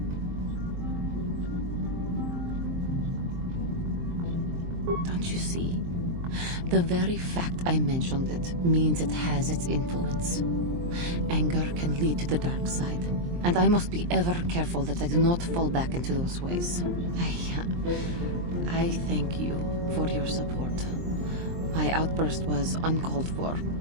Don't you see? The very fact I mentioned it means it has its influence. Anger can lead to the dark side, and I must be ever careful that I do not fall back into those ways. I thank you for your support. My outburst was uncalled for,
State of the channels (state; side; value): late; left; 23 ms